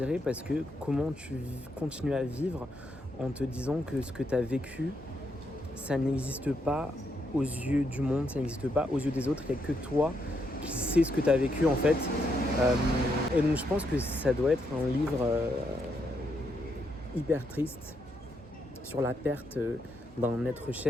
parce que comment tu continues à vivre en te disant que ce que tu as vécu, ça n'existe pas aux yeux du monde, ça n'existe pas aux yeux des autres, il n'y a que toi qui sais ce que tu as vécu en fait. Et donc je pense que ça doit être un livre hyper triste sur la perte d'un être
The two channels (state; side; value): normal; both; correlation 0.78